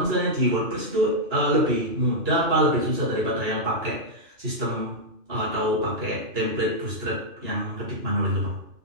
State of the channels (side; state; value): left; late; 2.9 ms